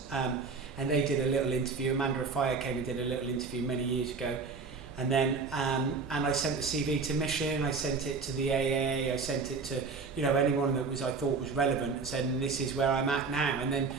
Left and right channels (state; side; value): quieter; left; 4.7 dB